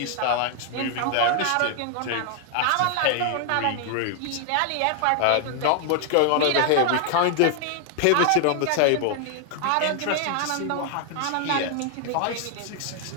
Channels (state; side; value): different; both; correlation 0.00